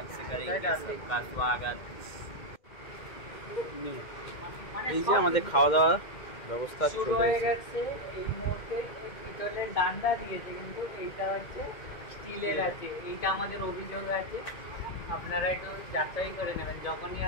এই যে আমাদের খাওয়া দাওয়া ব্যবস্থা চলে গেছে। এই মুহূর্তে পিতলের ডান্ডা দিয়েছে, কিন্তু এইটা হচ্ছে স্টিলের আছে। এইটা আমাদের অভিযোগ আছে, আপনারা একটু যাচাই করে নেবেন, যখনই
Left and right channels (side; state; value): right; late; 2.1 ms